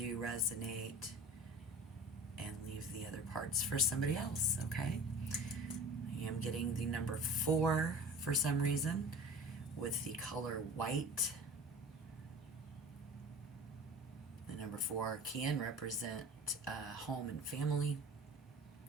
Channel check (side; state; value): both; normal; correlation 0.40